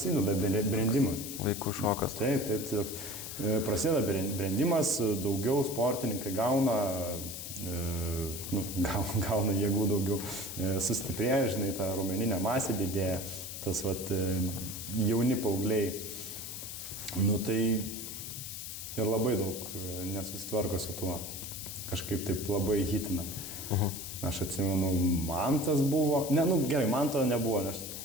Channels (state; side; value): noise; left; hiss, 8 dB below the sound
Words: brendimas. Vaikų šokas. Taip. Prasideda brendimas, daugiau sportininkai gauna jėgų daugiau, sustiprėja, žinai, ta raumeninė masė didėja, tas jauni paaugliai. Tai ir labai daug nesusitvarko su tuo. Kažkaip taip labai hitina. Aš atsimenu, Mantas buvo, gerai, Manto nebuvo, nes